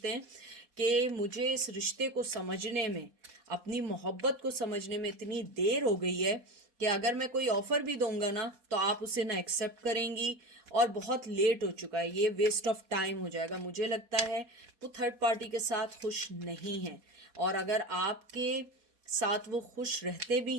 हैं कि मुझे इस रिश्ते को समझने में, अपनी मोहब्बत को समझने में इतनी देर हो गई है कि अगर मैं कोई ऑफर भी दूंगा ना, तो आप उसे ना एक्सेप्ट करेंगी, और बहुत लेट हो चुका है, ये वेस्ट ऑफ टाइम हो जाएगा। मुझे लगता है वो थर्ड पार्टी के साथ खुश नहीं है। और अगर आपके साथ वो खुश रहते भी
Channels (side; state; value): left; late; 4.2 ms